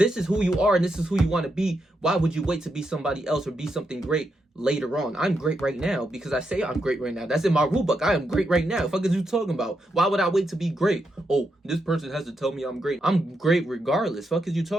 is who you are and this is who you want to be. Why would you wait to be somebody else or be something great later on? I'm great right now because I say I'm great right now. That's in my rule book. I am great right now. Fuck is you talking about? Why would I wait to be great? Oh, this person has to tell me I'm great. I'm great regardless. Fuck is you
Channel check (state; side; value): normal; both; correlation 0.83